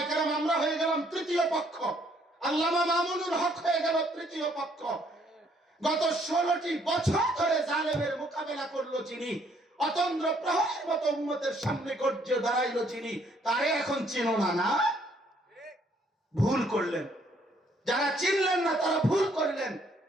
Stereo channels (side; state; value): both; normal; correlation 0.66